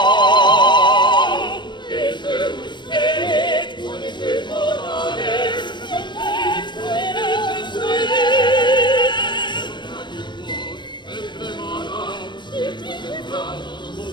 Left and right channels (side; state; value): right; late; 0.22 ms